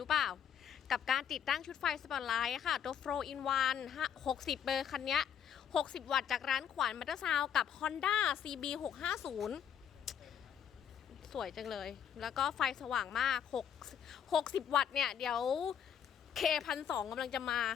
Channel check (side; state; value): right; quieter; 8.7 dB